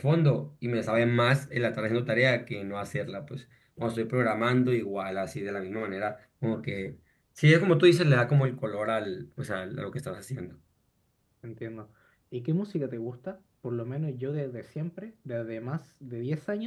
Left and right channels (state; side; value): identical; both; correlation 1.00